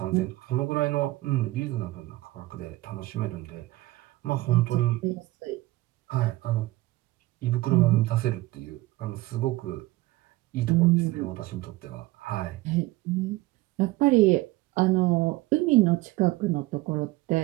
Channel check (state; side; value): quieter; left; 19.0 dB